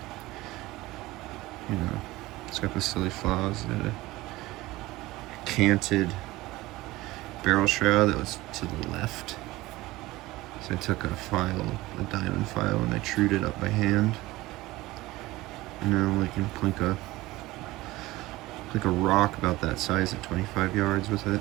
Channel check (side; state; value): left; quieter; 19.0 dB